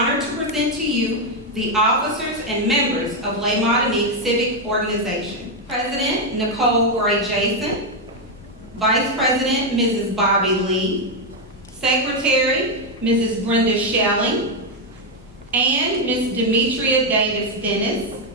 to present to you the officers and members of Les Martinique Civic Organization. President Nicole Gray Jason, Vice President Mrs. Bobby Lee, Secretary Mrs. Brenda Shelling, and Ms. Demetria Davis Dennis,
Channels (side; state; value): both; normal; correlation 0.03